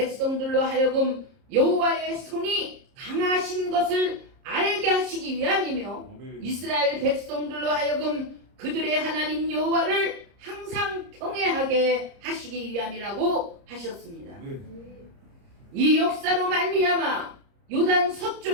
하여금 여호와의 손이 강하신 것을 알게 하시기 위함이며 이스라엘 백성들로 하여금 그들의 하나님 여호와를 항상 경외하게 하시기 위함이라고 하셨습니다. 이 역사로 말미암아 요단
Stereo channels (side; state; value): left; late; 30 ms